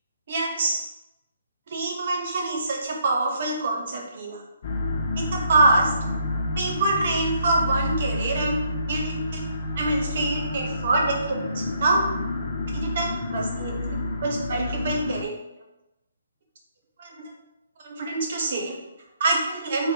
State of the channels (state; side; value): inverted; both; correlation -0.70